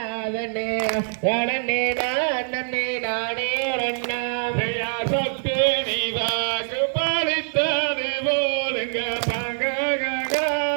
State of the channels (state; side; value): silent; left; digital silence